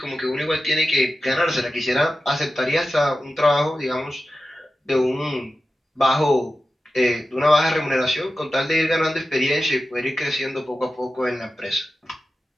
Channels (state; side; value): normal; both; correlation 0.93